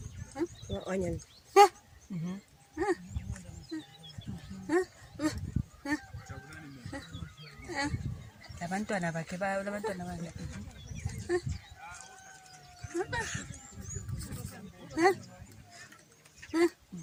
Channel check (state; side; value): identical; both; correlation 1.00